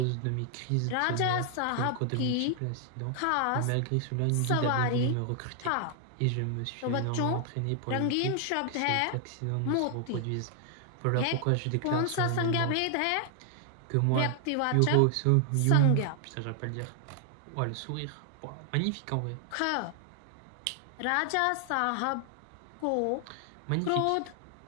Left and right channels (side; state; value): both; different; correlation 0.00